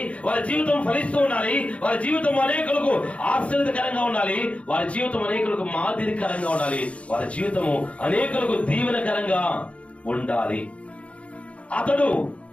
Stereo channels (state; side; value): late; right; 0.063 ms